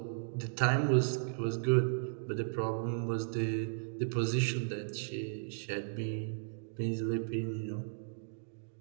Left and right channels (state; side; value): silent; left; digital silence